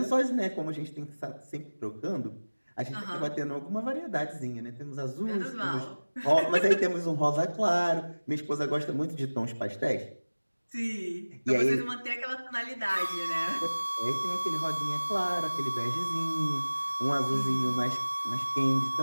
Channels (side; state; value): both; inverted; correlation -1.00